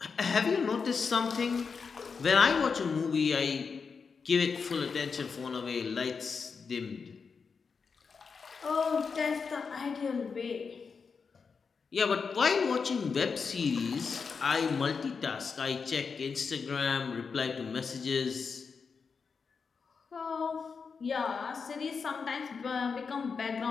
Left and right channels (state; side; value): quieter; right; 5.4 dB